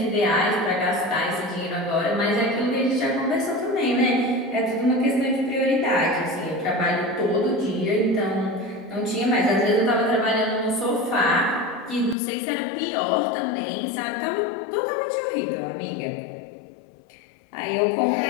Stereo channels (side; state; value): right; drops out; at 12.2 s